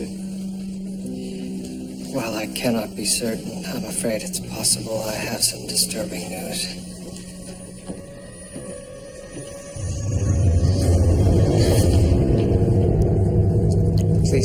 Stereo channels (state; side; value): identical; both; correlation 1.00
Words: Well, I cannot be certain. I'm afraid it's possible I have some disturbing news.